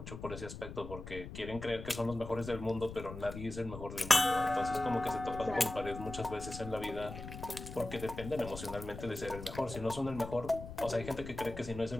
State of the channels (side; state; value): left; noise; rumble, 10 dB below the sound